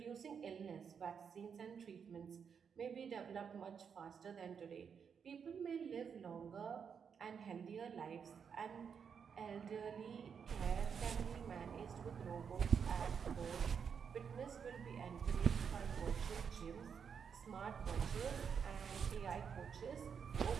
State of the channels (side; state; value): left; quieter; 6.8 dB